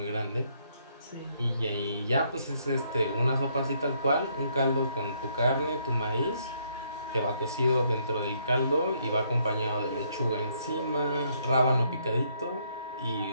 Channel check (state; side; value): inverted; both; correlation -0.70